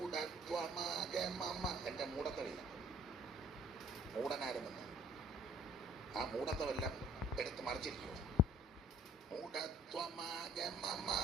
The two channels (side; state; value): both; normal; correlation 0.55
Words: എൻ്റെ മൂഢത്തമില്ല, മൂഢനായിരുന്നെന്ന് ആ മൂഢത്വമെല്ലാം എടുത്ത് മറിച്ചിരിക്കുക. മൂഢത്വമാകമമ